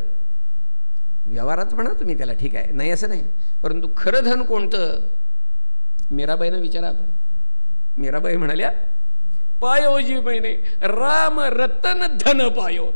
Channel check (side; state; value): both; inverted; correlation -1.00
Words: व्यवहारात म्हणा तुम्ही त्याला, ठीक आहे, नाही असं नाही, परंतु खरं धन कोणतं. मीराबाईनं विचारा आपण. मीराबाई म्हणाल्या पायो जी महिने राम रतन धन पायो,